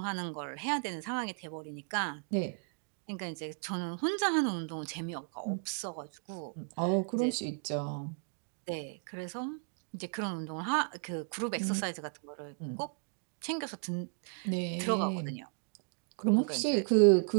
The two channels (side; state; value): left; silent; 55 dB below the other